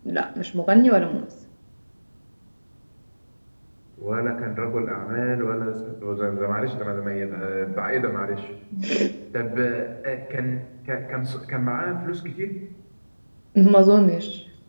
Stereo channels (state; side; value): inverted; both; correlation -1.00